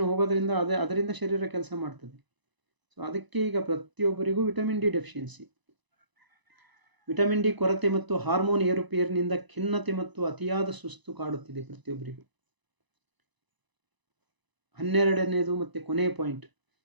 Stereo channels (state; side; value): late; left; 1.0 ms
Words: ಹೋಗೋದ್ರಿಂದ ಅದರಿಂದ ಶರೀರ ಕೆಲಸ ಮಾಡ್ತದೆ. ಸೊ ಅದಕ್ಕೆ ಈಗ ಪ್ರತಿಯೊಬ್ಬರಿಗೂ vitamin D deficiency, vitamin D ಕೊರತೆ ಮತ್ತು ಹಾರ್ಮೋನ್ ಏರುಪೇರಿನಿಂದ ಖಿನ್ನತೆ ಮತ್ತು ಅತಿಯಾದ ಸುಸ್ತು ಕಾಡುತ್ತಿದೆ ಪ್ರತಿಯೊಬ್ಬರಿಗೂ. 12ನೇದು ಮತ್ತು ಕೊನೆಯ ಪಾಯಿಂಟ್,